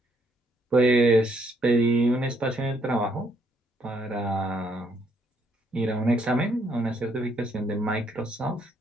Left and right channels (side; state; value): both; normal; correlation 0.70